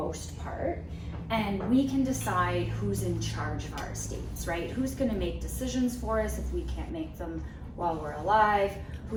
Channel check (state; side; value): identical; both; correlation 1.00